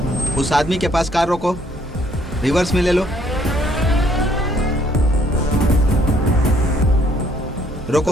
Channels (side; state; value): both; normal; correlation 0.65